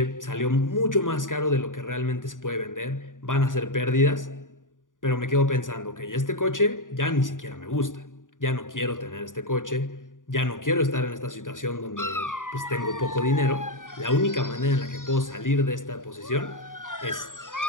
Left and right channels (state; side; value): late; right; 0.88 ms